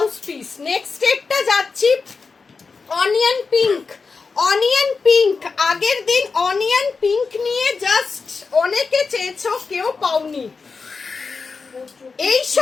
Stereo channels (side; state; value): right; quieter; 4.7 dB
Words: পিস। নেক্সট একটা যাচ্ছি অনিয়ন পিঙ্ক, অনিয়ন পিঙ্ক। আগের দিন অনিয়ন পিঙ্ক নিয়ে জাস্ট অনেকে চেয়েছো, কেউ পাওনি। এই